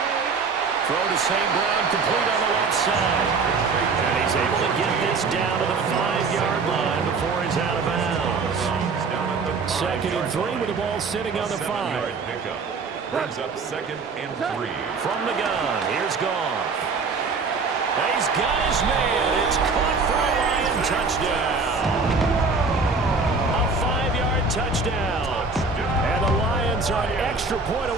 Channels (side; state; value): left; quieter; 4.4 dB